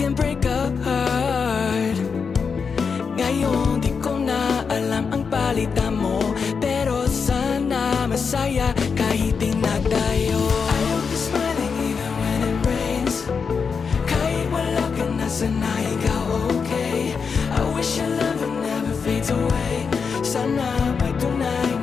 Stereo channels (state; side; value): quieter; right; 5.7 dB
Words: break a heart. Ngayon di ko na alam ang palitan mo.